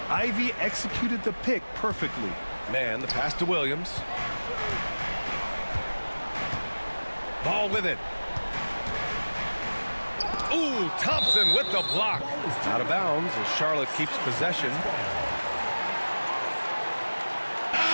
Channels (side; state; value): both; inverted; correlation -1.00